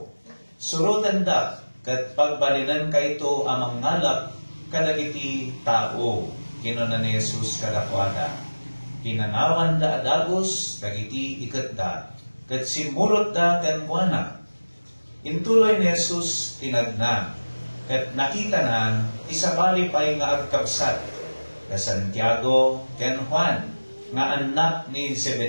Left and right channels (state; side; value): inverted; both; correlation -1.00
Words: Surutan da ket pagbalinan kayto amang ngalap kadagiti tao. Kinuna ni Jesus kadakwada. Pinanawan da adagos dagiti ikadda ket simurot da ken kuana. Intuloy ni Jesus tinagna ket nakita na isabali pay nga agkabsat ka Santiago ken Juan nga anak ni